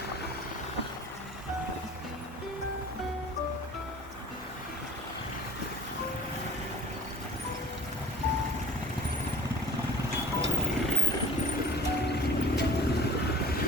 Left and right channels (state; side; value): normal; both; correlation 0.49